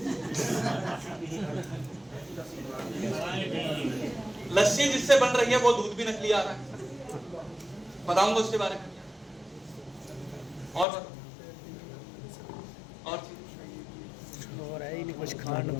लस्सी जिससे बन रही है वो दूध भी नकली आ रहा है, बताऊंगा उसके बारे में। और और है ही नहीं कुछ खाना,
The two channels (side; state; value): right; drops out; at 10.9 s